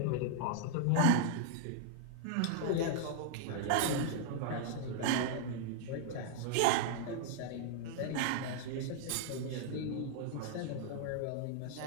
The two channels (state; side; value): different; both; correlation -0.01